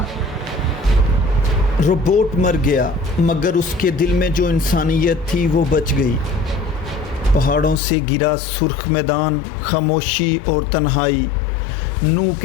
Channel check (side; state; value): right; drops out; at 7.8 s